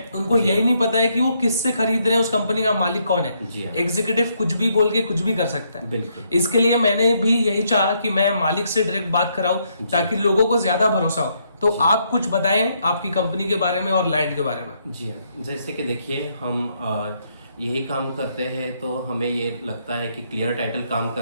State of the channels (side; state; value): both; inverted; correlation -0.74